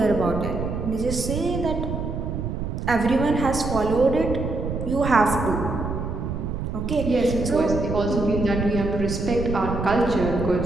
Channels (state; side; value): noise; right; rumble, 4 dB below the sound